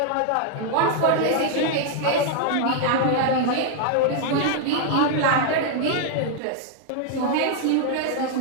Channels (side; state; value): both; different; correlation 0.00